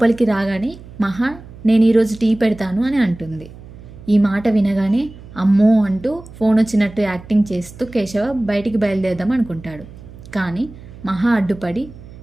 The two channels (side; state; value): right; noise; hum, 18 dB below the sound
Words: రాగానే మహా నేను ఈరోజు టీ పెడతాను అని అంటుంది. ఈ మాట వినగానే అమ్మో అంటూ ఫోన్ వచ్చినట్టు యాక్టింగ్ చేస్తూ కేశవ బయటికి బయలుదేరదాం అనుకుంటాడు. కానీ మహా అడ్డుపడి